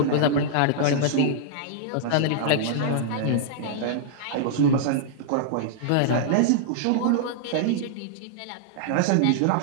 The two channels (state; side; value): different; both; correlation -0.01